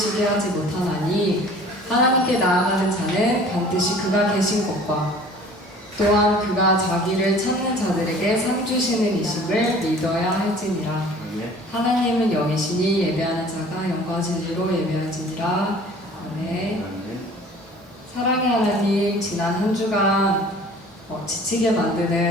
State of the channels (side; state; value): both; normal; correlation 0.48